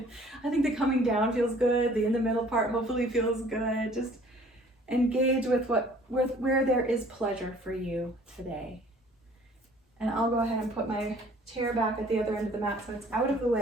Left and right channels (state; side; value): normal; both; correlation 0.54